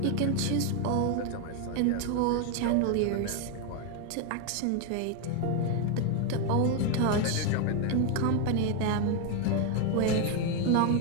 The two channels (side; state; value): both; different; correlation 0.01